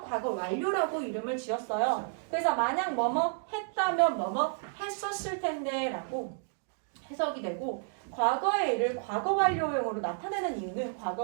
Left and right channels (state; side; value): silent; left; 57 dB below the other